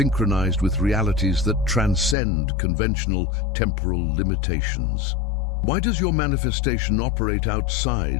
with realities that transcend conventional temporal limitations. Why does your manifestation operate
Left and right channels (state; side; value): drops out; right; at 2.1 s